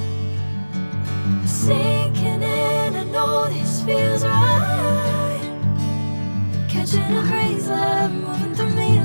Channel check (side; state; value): both; inverted; correlation -1.00